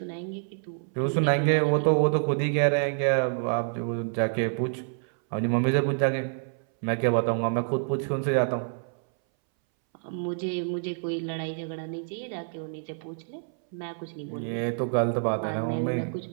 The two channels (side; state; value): left; silent; 60 dB below the other